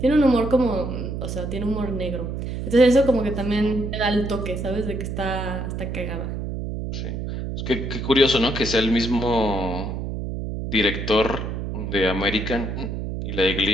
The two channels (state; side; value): noise; right; hum, 4 dB below the sound